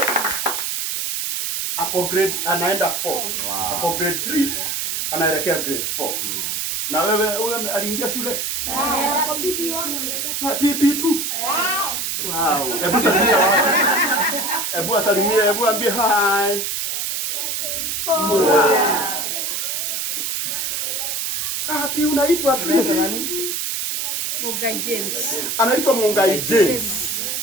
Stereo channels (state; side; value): noise; right; hiss, 1 dB below the sound